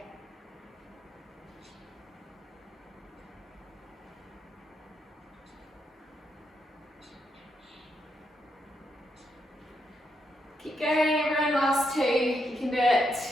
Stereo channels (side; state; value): both; normal; correlation 0.80